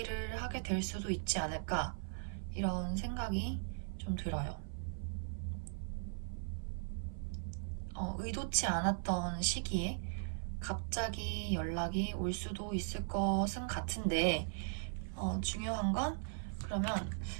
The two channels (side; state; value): left; silent; 52 dB below the other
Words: 하게 될 수도 있지 않을까, 이런 생각이 좀 들어요. 의도치 않았던 시기에 갑자기 연락이 올 수도 있을 것은 같은데, 중요한 건 그러면